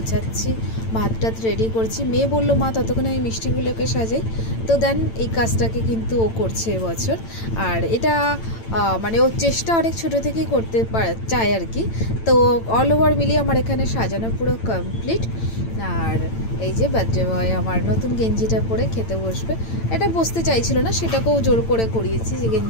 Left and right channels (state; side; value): late; right; 8.9 ms